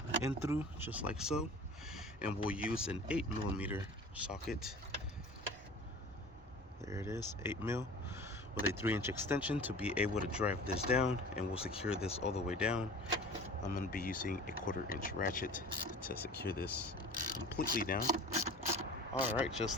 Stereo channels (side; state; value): both; normal; correlation 0.41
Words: in through, just like so. And we'll use an 8mm socket. There it is, 8mm with a 3-inch extension to be able to drive this down, and we'll secure this all the way down. I'm going to be using a 1/4-inch ratchet to secure this completely down. Alright,